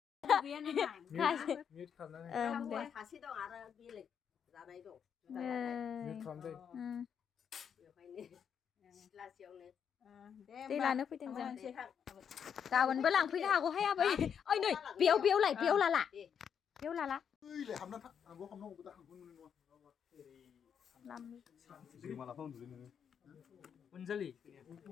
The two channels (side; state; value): right; quieter; 7.7 dB